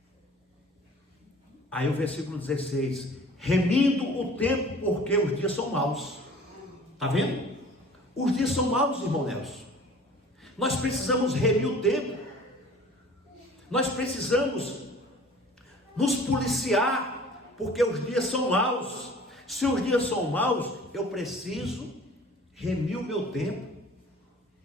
Aí o versículo 16: remindo o tempo, porque os dias são maus. Está vendo? Os dias são maus, irmão Nelson. Nós precisamos remir o tempo. Nós precisamos nos policiar, porque os dias são maus. Se os dias são maus, eu preciso remir o meu tempo.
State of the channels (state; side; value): normal; both; correlation 0.47